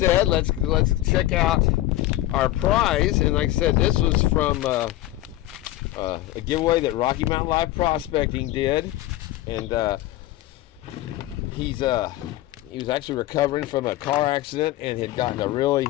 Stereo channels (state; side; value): quieter; right; 15.8 dB